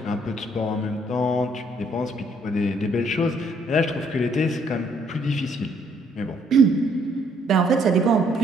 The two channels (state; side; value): normal; both; correlation 0.67